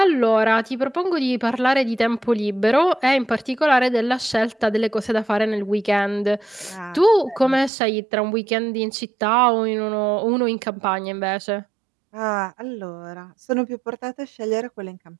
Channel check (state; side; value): drops out; left; at 7.7 s